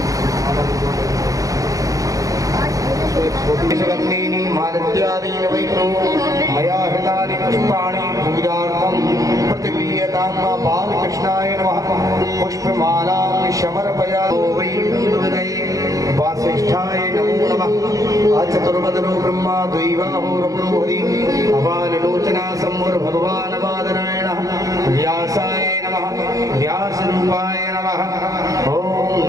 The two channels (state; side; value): late; left; 0.17 ms